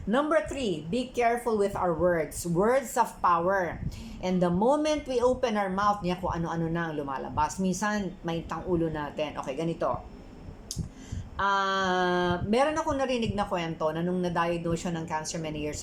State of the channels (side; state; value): both; identical; correlation 1.00